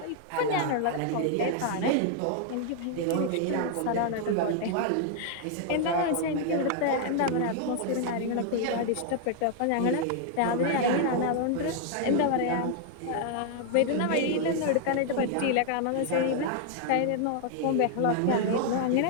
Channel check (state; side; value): different; both; correlation 0.00